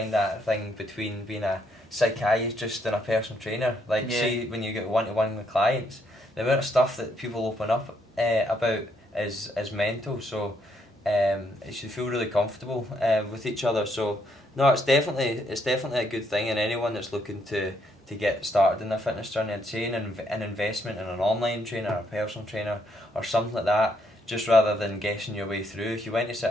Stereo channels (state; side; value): normal; both; correlation 0.73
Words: that thing between being a psychiatrist and a personal trainer. Like, see, when you get one-to-one with clients, the amount of stuff that people open up about is mental. So it should feel really comfortable with each other. So no, it's definitely a good thing, and anyone that's looking to get started in their fitness journey, I'd say an investment in an online trainer, or a personal trainer, or something like that. Just rather than guessing your way through. If you went to